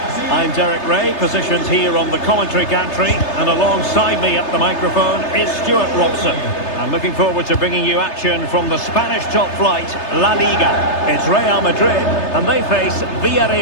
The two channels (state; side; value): late; right; 3.3 ms